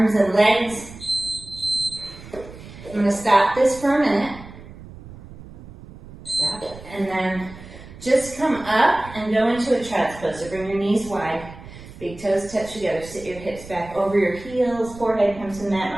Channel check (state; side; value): noise; right; rumble, 17 dB below the sound